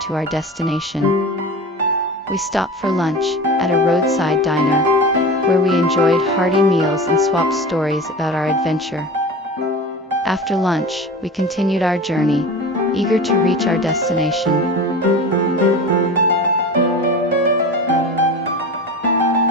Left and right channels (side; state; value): both; normal; correlation 0.32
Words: to our destination. We stopped for lunch at a roadside diner, where we enjoyed hearty meals and swapped stories about our adventure. After lunch, we continued our journey, eager to reach our destination.